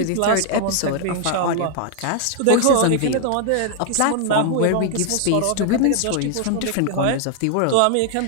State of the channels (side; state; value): both; different; correlation 0.00